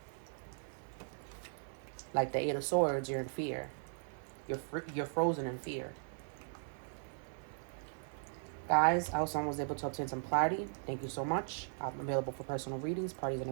like the Eight of Swords, you're in fear. You're frozen in fear. Guys, I hope someone was able to obtain some clarity. Thank you so much. I'm available for personal readings, parties, and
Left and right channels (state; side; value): silent; left; 52 dB below the other